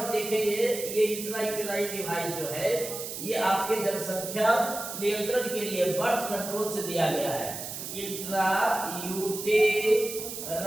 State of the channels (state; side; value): noise; right; hiss, 7 dB below the sound